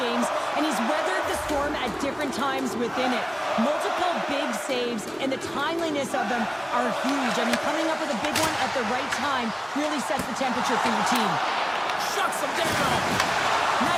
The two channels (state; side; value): identical; both; correlation 1.00